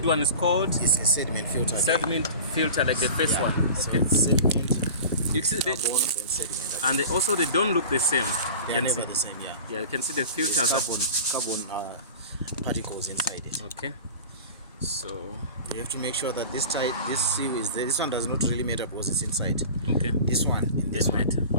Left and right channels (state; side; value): inverted; both; correlation -0.36